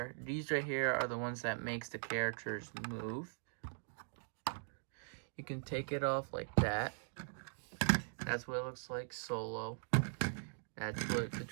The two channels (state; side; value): silent; left; digital silence